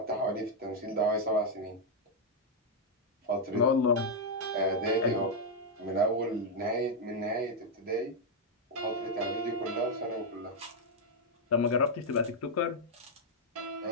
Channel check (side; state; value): both; normal; correlation -0.02